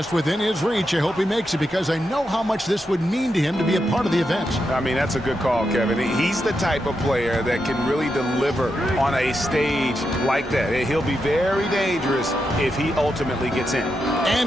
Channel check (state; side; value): normal; both; correlation 0.85